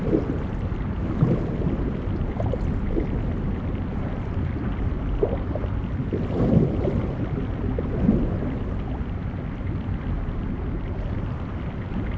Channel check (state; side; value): identical; both; correlation 1.00